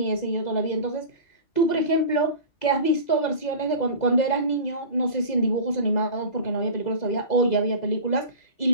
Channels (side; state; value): right; late; 2.0 ms